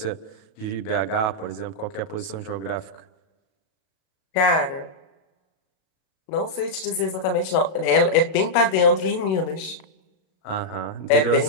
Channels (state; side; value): late; right; 37 ms